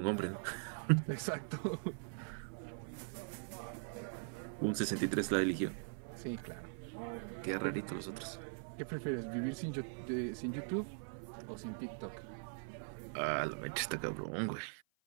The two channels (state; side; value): silent; left; 50 dB below the other